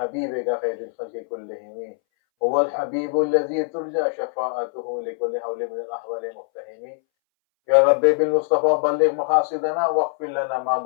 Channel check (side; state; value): right; silent; 62 dB below the other